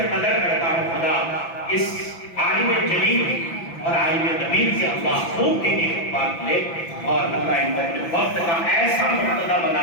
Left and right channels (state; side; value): late; right; 5.9 ms